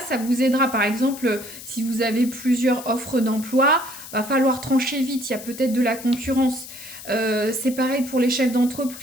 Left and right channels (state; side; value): noise; left; hiss, 14 dB below the sound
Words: vous aidera. Par exemple, si vous avez plusieurs offres d'emploi, va falloir trancher vite, il y a peut-être de la concurrence. C'est pareil pour les chefs